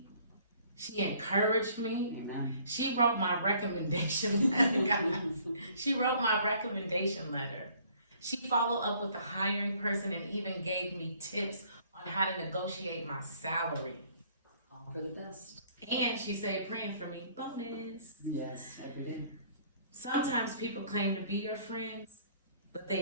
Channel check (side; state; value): both; inverted; correlation -0.59